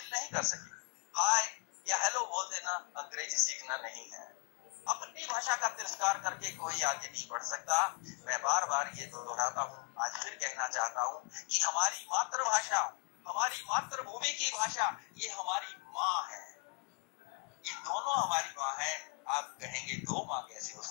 नहीं कर सके, हाय या हेलो बोल देना अंग्रेजी सीखना नहीं है। अपनी भाषा का तिरस्कार करके कोई आगे नहीं बढ़ सकता। मैं बार बार ये दोहराता हूँ, आज फिर कहना चाहता हूँ कि हमारी मातृभाषा, हमारी मातृभूमि की भाषा, ये हमारी माँ है, ये दोनों हमारी माँ है। आप कहेंगे दो माँ कैसे हो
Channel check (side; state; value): right; quieter; 34.1 dB